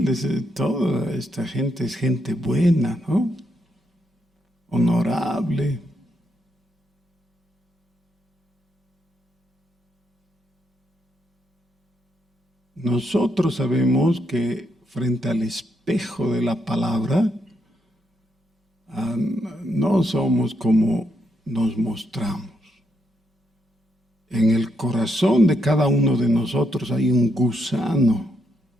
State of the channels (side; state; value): both; normal; correlation 0.79